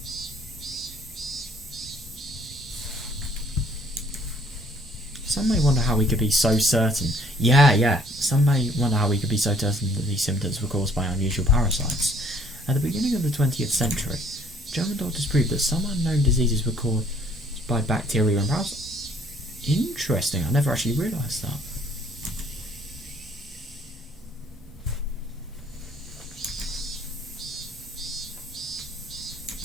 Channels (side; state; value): both; normal; correlation 0.60